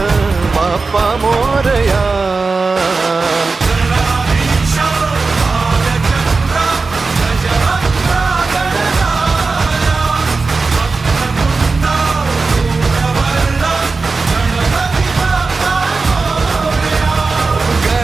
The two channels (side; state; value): left; quieter; 4.1 dB